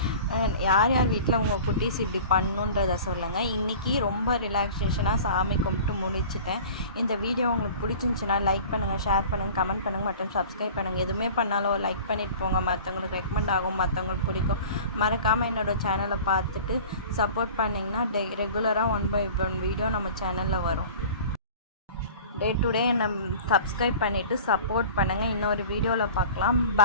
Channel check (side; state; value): both; inverted; correlation -0.41